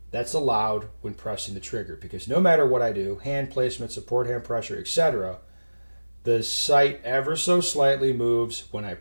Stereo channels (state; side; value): inverted; both; correlation -1.00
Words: that's allowed when pressing the trigger? Because no matter what I do, hand placement, support hand pressure, etc., the sight ever so slightly moves when I